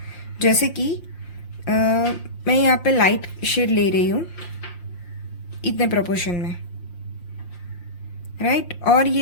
जैसे कि मैं यहाँ पे लाइट शेड ले रही हूँ इतने प्रोपोर्शन में, राइट। और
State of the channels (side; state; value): right; late; 5.7 ms